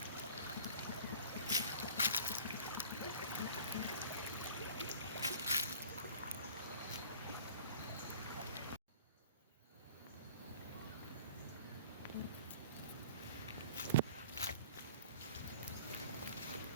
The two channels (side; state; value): both; inverted; correlation -0.47